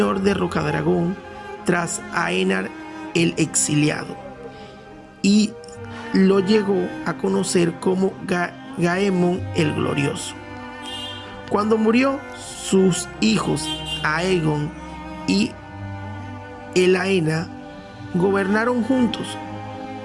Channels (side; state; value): both; identical; correlation 1.00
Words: de Rocadragón tras Aenar el Exiliado, y lo llegó a conocer como Gaemon el Glorioso. Cuando murió, sus hijos Aegon y Elaena gobernaron juntos.